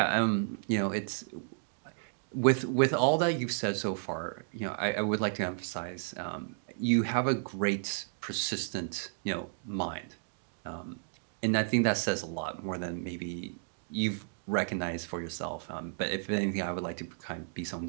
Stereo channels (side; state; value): left; silent; digital silence